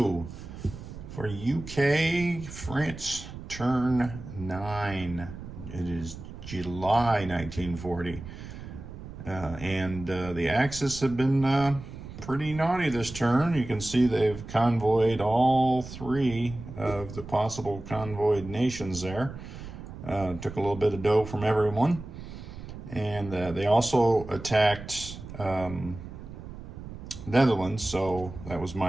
for UK France Turn 9. It is July 1940. And the Axis have been pretty naughty this turn. You can see they've convoyed all three of the possible convoyed nations there. Took a little bit of dough from everyone. And they also attacked Netherlands, so that was my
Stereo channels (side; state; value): right; noise; rumble, 12 dB below the sound